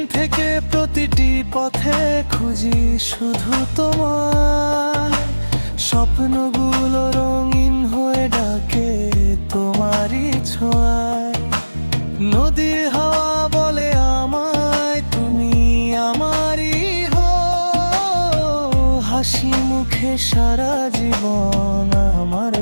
থেকে প্রতিটি পথে খুঁজি শুধু তোমার, স্বপ্নগুলো রঙিন হয়ে ডাকে তোমারই ছোঁয়ায়। নদীর হাওয়া বলে আমায় তুমি আমারই হো, হাসি মুখে সারা জীবন আমার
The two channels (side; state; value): both; inverted; correlation -1.00